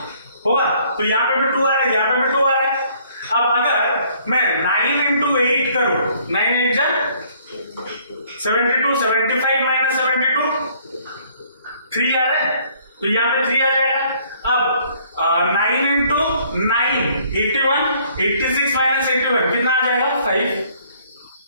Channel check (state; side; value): inverted; both; correlation -0.61